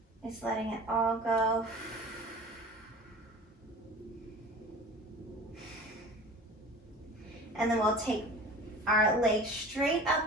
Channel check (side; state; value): both; normal; correlation 0.40